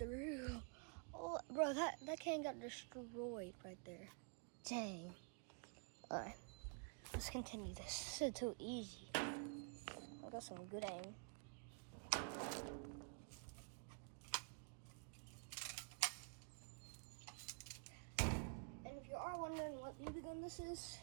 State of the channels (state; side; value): quieter; left; 39.0 dB